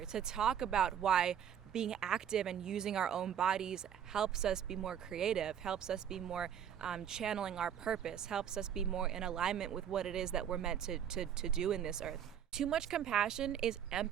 to talk about why being active and using our own bodies helps us be more creative, helps us be more channeling our purpose, helps us be more in alignment with what it is that we're meant to do in this earth. Too much compassion is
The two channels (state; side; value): quieter; left; 9.1 dB